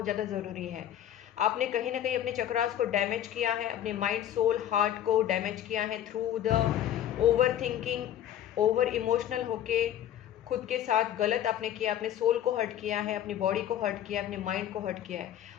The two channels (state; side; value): quieter; right; 11.0 dB